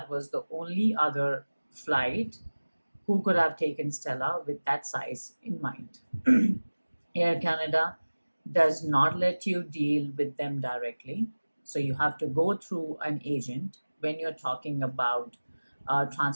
was the only other flight who could have taken Stella with that size in mind. Air Canada does not let you deal with them directly. So you have to go through an agent when you're talking about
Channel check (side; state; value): both; inverted; correlation -1.00